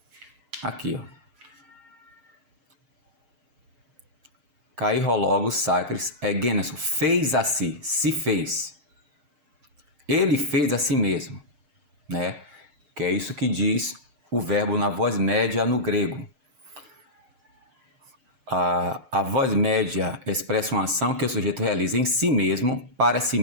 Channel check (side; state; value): left; late; 6.5 ms